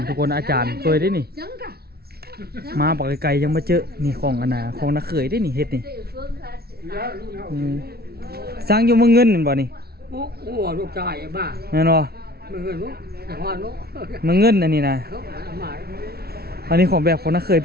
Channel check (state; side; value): late; left; 0.45 ms